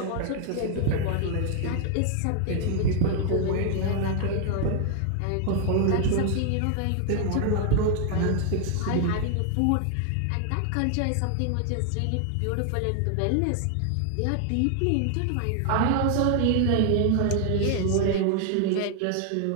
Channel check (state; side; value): different; both; correlation 0.00